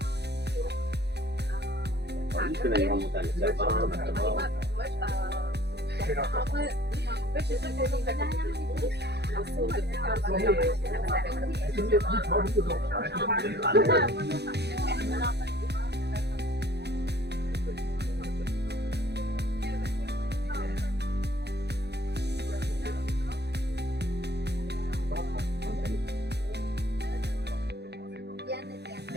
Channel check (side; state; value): left; late; 0.48 ms